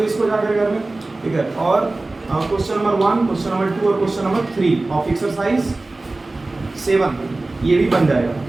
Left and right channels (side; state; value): left; quieter; 3.1 dB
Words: इसको जाकर घर में, ठीक है। और क्वेश्चन नंबर 1, क्वेश्चन नंबर 2 और क्वेश्चन नंबर 3 ऑफ एक्सरसाइज 7 ये भी बन जाएगा,